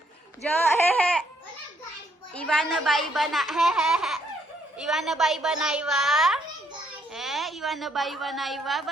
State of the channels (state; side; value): normal; both; correlation 0.71